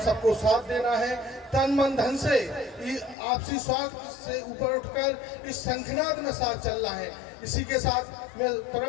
सबको साथ देना है तन मन धन से, आपसी स्वार्थ से ऊपर उठकर इस शंखनाद में साथ चलना है। इसी के साथ मैं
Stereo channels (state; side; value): drops out; right; at 3.2 s